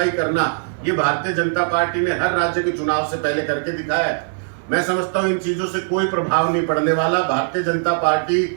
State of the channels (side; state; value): left; silent; digital silence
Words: करना ये भारतीय जनता पार्टी ने हर राज्य के चुनाव से पहले करके दिखाया है। मैं समझता हूं इन चीजों से कोई प्रभाव नहीं पड़ने वाला। भारतीय जनता पार्टी